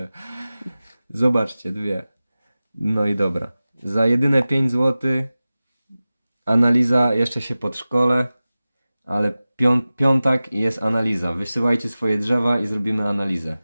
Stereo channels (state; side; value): inverted; both; correlation -0.96